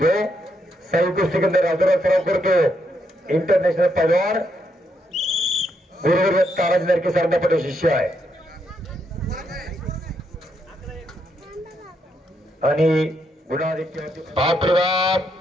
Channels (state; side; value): normal; both; correlation 0.78